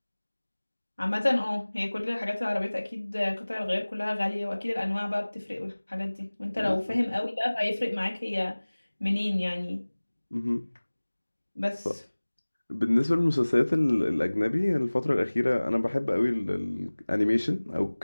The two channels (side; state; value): both; inverted; correlation -1.00